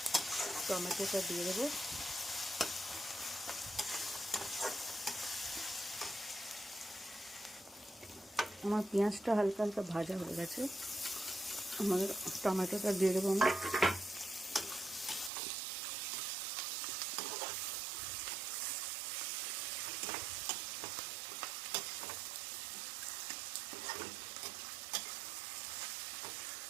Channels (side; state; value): left; drops out; at 15.3 s